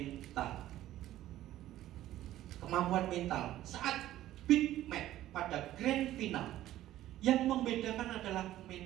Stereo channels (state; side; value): quieter; left; 13.9 dB